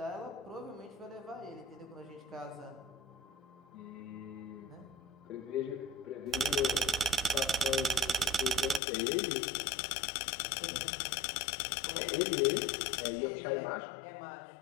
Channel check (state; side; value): drops out; right; at 8.8 s